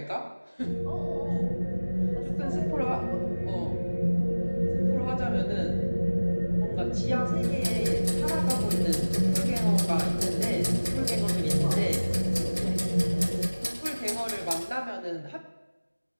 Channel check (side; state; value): both; inverted; correlation -1.00